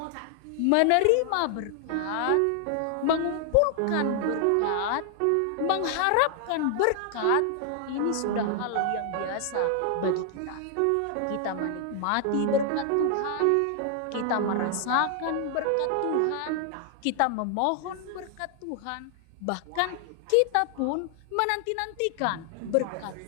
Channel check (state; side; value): different; both; correlation 0.00